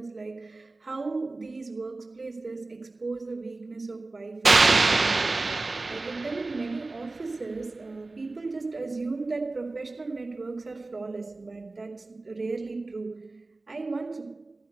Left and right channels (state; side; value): quieter; left; 3.3 dB